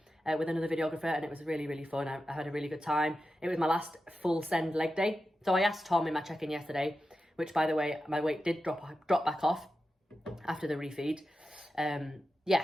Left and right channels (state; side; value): normal; both; correlation 0.91